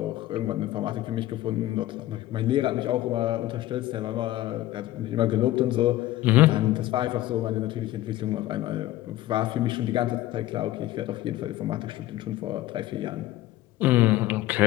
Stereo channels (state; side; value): quieter; right; 15.4 dB